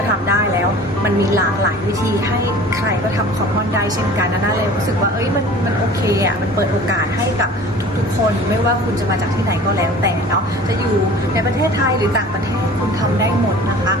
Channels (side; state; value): both; normal; correlation 0.44